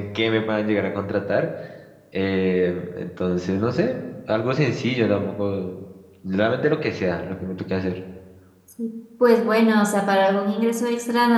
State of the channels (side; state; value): both; identical; correlation 1.00